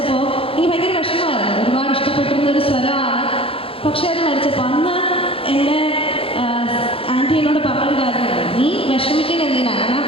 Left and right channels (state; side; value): late; right; 0.27 ms